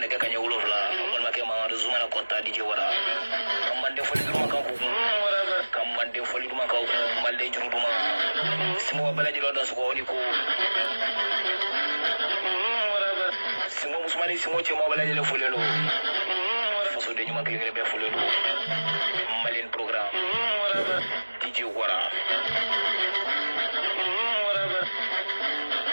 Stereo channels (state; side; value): inverted; both; correlation -1.00